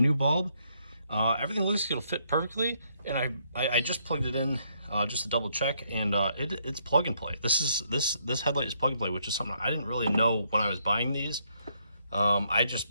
new bulb. Everything looks like it'll fit perfectly, and I just plugged it in just to double check, and it's plug and play. This headlight is plug and play, which is something I didn't really know when I was buying these. I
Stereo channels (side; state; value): both; inverted; correlation -0.72